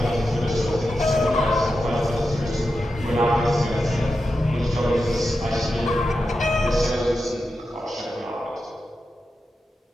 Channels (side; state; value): both; normal; correlation 0.89